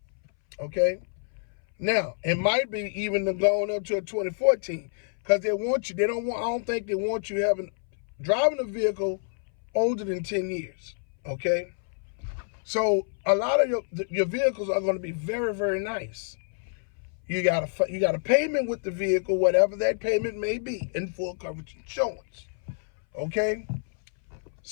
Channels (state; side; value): silent; right; 60 dB below the other